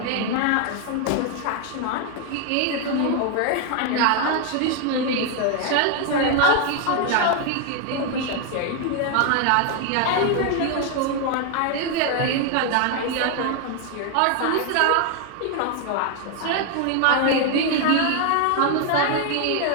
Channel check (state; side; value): different; both; correlation 0.01